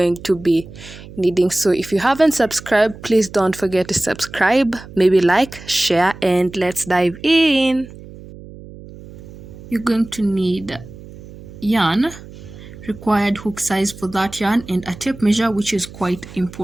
to be needing. So if you haven't subscribed, please don't forget to subscribe, maybe like, share, and let's dive in. You're going to need yarn, required hook size for that yarn, and a tape measure, which is quite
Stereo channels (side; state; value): right; noise; hum, 17 dB below the sound